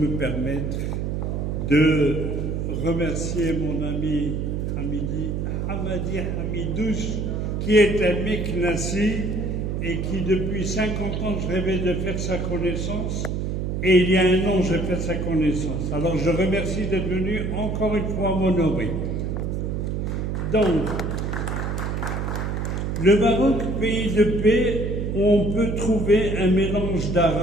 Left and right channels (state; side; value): noise; right; hum, 1 dB below the sound